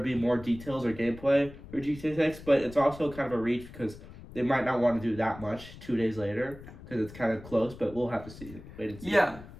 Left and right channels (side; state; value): left; noise; rumble, 16 dB below the sound